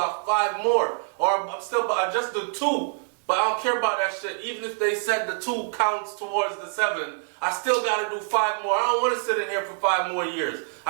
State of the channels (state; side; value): silent; left; digital silence